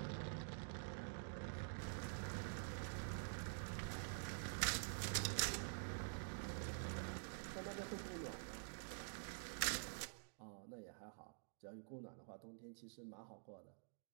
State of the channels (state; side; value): silent; left; digital silence